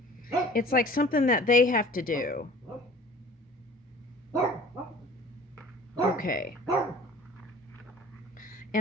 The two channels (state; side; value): normal; both; correlation 0.47